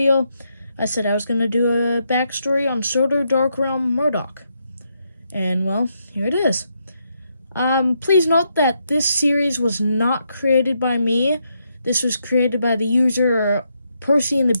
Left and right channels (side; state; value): both; inverted; correlation -0.79